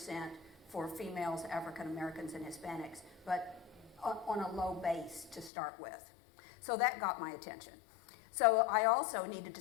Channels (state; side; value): drops out; right; at 5.5 s